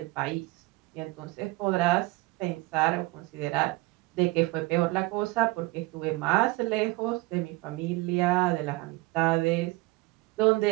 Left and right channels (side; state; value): left; quieter; 21.9 dB